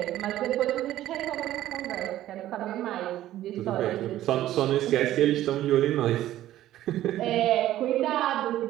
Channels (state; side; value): quieter; left; 13.6 dB